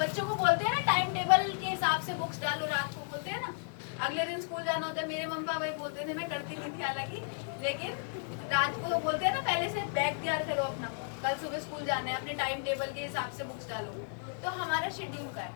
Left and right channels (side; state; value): right; silent; 55 dB below the other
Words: को बोलते हैं ना टाइम टेबल के हिसाब से बुक्स डालो, रात को बोलते हैं ना अगले दिन स्कूल जाना होता है। मेरे मम्मी पापा बोलते थे, मैं करती नहीं थी हालांकि, लेकिन रात को बोलते हैं ना पहले से बैग तैयार करो अपना, कल सुबह स्कूल जाना है, अपने टाइम टेबल के हिसाब से बुक्स डालो। तो हमारा शेड्यूल का